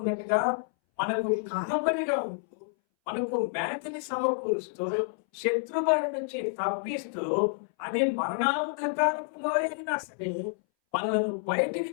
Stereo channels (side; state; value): right; silent; 59 dB below the other